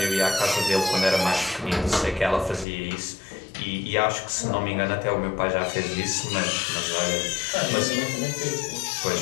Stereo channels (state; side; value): drops out; right; at 2.7 s